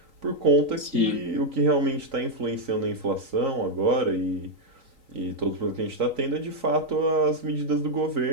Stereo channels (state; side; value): late; left; 3.9 ms